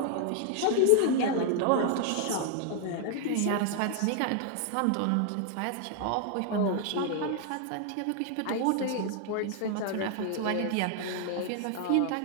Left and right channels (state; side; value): different; both; correlation 0.00